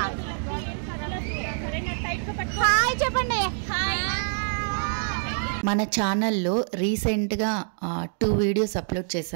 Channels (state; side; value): silent; left; digital silence